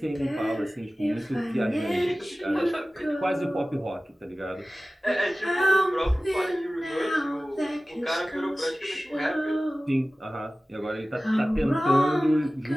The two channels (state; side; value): normal; both; correlation 0.97